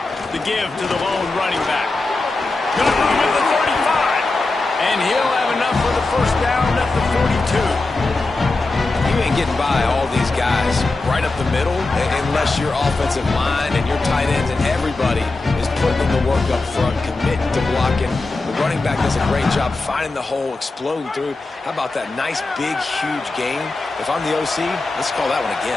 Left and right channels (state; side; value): quieter; right; 3.3 dB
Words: The give to the lone running back. Got room at the 35. And he'll have enough for the 1st down at the 42. You ain't getting by all these guys right up the middle unless your offensive line and your tight ends and everybody is putting in the work up front, committing to blocking. The running back does a great job finding the hole, exploding through. How about that nice, big, huge game? If I'm the OC, let's call that one